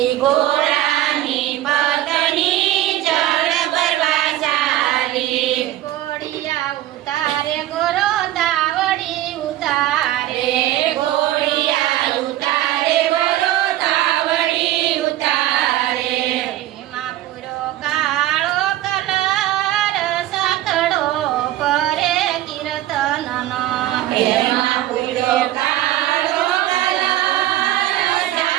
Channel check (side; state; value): left; quieter; 14.5 dB